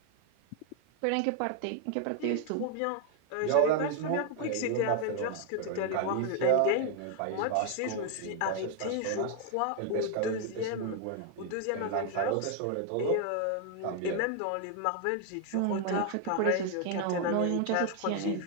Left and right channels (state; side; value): different; both; correlation 0.00